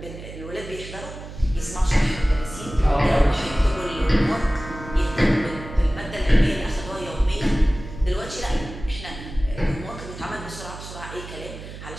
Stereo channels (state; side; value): noise; right; hum, 12 dB below the sound